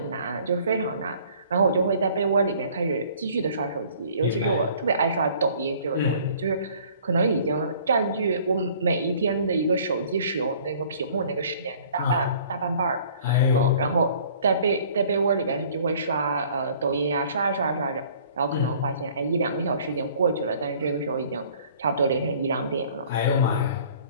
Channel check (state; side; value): inverted; both; correlation -0.54